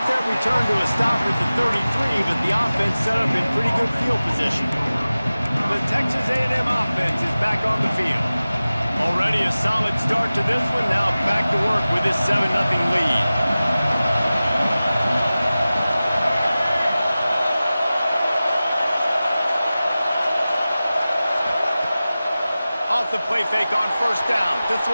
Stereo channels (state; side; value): inverted; both; correlation -0.96